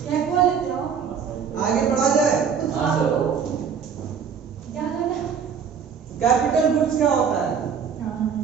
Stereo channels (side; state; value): left; quieter; 6.9 dB